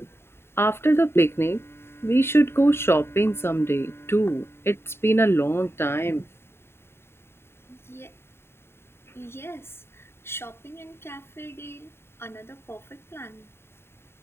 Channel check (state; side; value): late; right; 0.12 ms